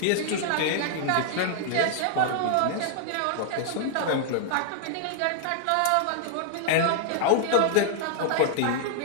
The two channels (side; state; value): both; different; correlation -0.01